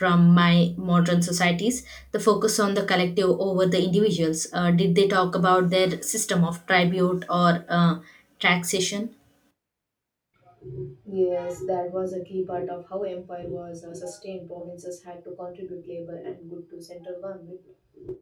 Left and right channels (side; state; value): both; identical; correlation 1.00